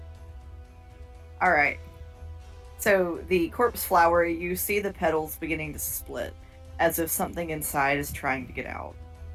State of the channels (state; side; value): identical; both; correlation 1.00